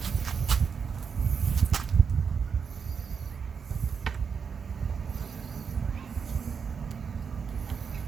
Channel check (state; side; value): quieter; left; 6.2 dB